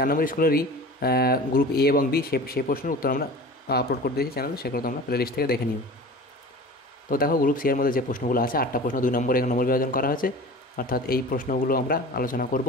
নম্বর স্কুলেরই গ্রুপ এ এবং বি, সেই প্রশ্নের উত্তর আমরা আপলোড করে দিয়েছি চ্যানেলে, সেগুলো তোমরা প্লেলিস্ট থেকে দেখে নিও। তো দেখো, গ্রুপ সি এর মধ্যে যে প্রশ্নগুলো আছে 8টা প্রশ্ন 2 নম্বর 1 নম্বর বিভাজন করা হয়েছে, অর্থাৎ এই প্রশ্নগুলো আমরা আলোচনা করব।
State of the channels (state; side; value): normal; both; correlation 0.38